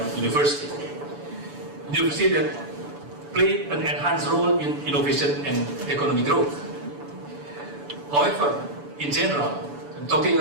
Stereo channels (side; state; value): left; late; 7.0 ms